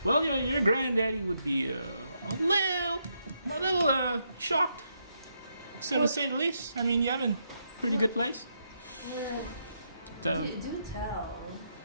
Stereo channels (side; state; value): both; inverted; correlation -0.79